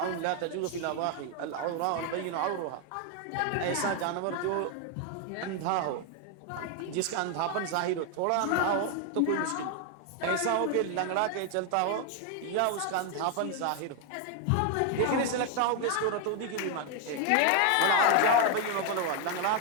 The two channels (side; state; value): both; different; correlation 0.01